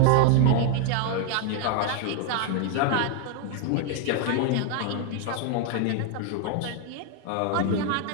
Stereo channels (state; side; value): different; both; correlation 0.01